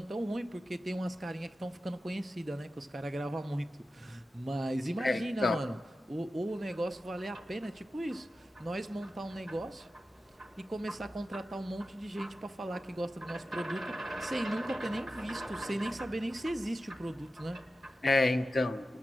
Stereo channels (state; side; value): normal; both; correlation 0.93